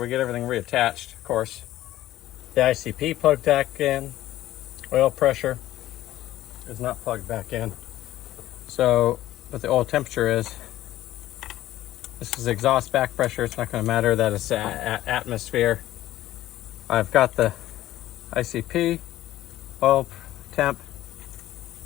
get everything reattached, of course. The ICP plugged back in. Oil pressure is not plugged back in. So what the oil temperature is, this is exhaust back pressure. It's not going to matter that it's atmosphere. I've got the ICP, oil temp.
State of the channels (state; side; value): quieter; right; 14.5 dB